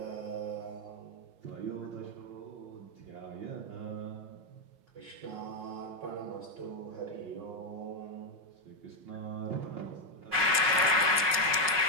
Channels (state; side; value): late; left; 5.5 ms